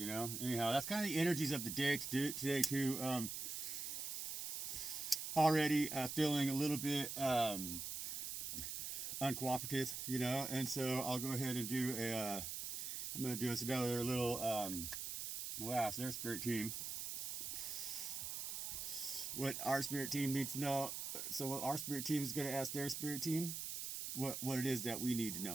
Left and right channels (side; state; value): right; noise; hiss, 4 dB below the sound